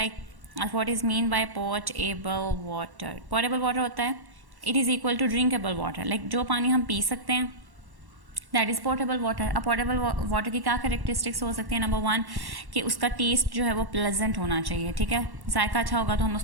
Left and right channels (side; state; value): left; late; 1.1 ms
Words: what is mean by portable water. Portable water होता है it is equal to drinkable water, like जो पानी हम पी सकते हैं दैट इज़ पोर्टेबल वाटर. अब पोर्टेबल वाटर की क्या करेक्टरिस्टिक्स हो सकती है? नंबर वन कि उसका टेस्ट जो है वो प्लेजेंट होना चाहिए, ठीक है, जायका अच्छा होगा तो हम